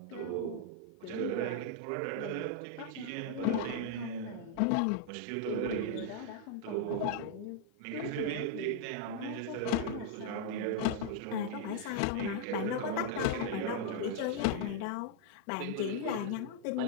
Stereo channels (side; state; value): both; different; correlation -0.01